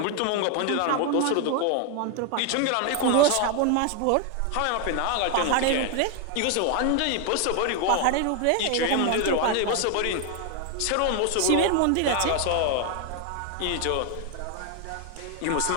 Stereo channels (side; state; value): both; different; correlation 0.01